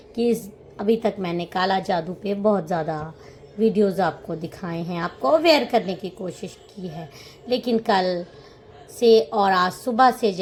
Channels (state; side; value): identical; both; correlation 1.00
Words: कि अभी तक मैंने काला जादू पे बहुत ज़्यादा वीडियोज़ आपको दिखाए हैं, आपको अवेयर करने की कोशिश की है। लेकिन कल से और आज सुबह से